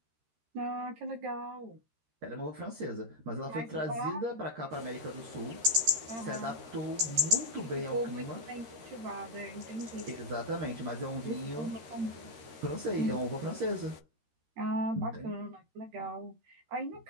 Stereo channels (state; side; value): late; left; 13 ms